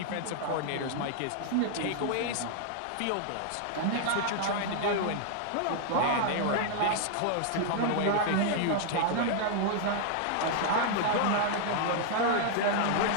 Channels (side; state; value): both; different; correlation -0.01